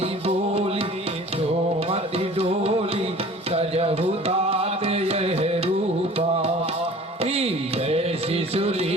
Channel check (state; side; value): normal; both; correlation 0.46